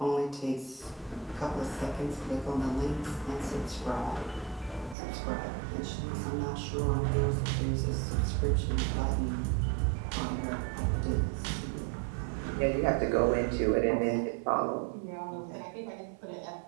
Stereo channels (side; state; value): left; drops out; at 5.0 s